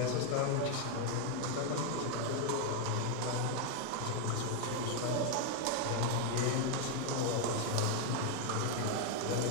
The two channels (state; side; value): different; both; correlation 0.00